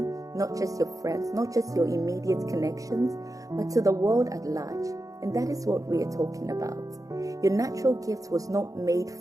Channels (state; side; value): late; left; 0.17 ms